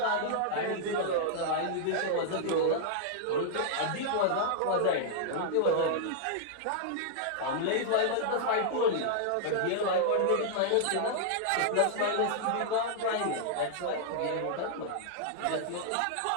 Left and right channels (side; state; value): both; different; correlation -0.01